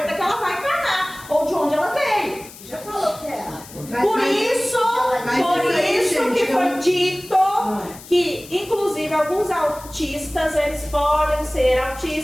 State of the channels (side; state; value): left; noise; hiss, 18 dB below the sound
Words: que ela vai encarnar, ou de onde ela veio. Já falou que é. Por isso que foi dito que, inclusive, alguns autistas, eles podem ser